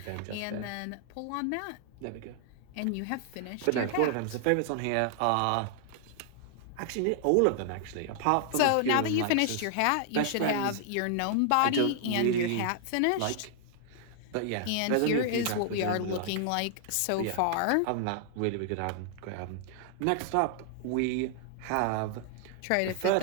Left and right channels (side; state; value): both; different; correlation 0.00